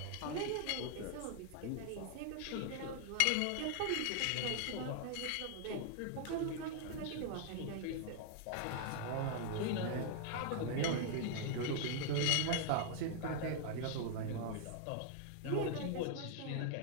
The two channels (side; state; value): both; different; correlation 0.00